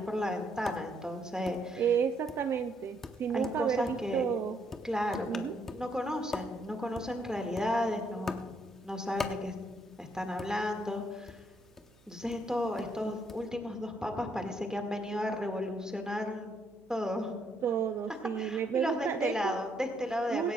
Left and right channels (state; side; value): noise; right; hum, 30 dB below the sound